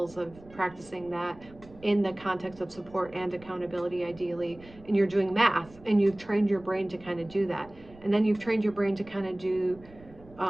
of practicing that in the context of support and accountability, ideally, and you're doing math, and you've trained your brain to kind of do that. And then you've trained your brain to kind of do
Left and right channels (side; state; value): right; noise; rumble, 22 dB below the sound